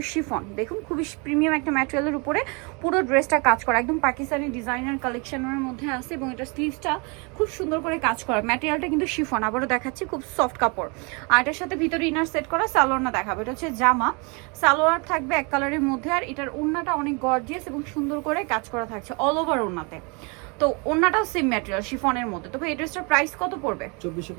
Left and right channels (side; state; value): left; quieter; 31.4 dB